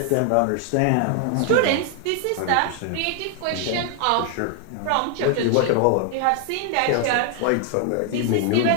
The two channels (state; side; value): different; both; correlation 0.00